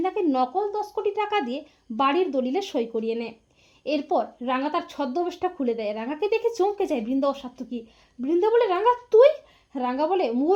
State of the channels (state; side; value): identical; both; correlation 1.00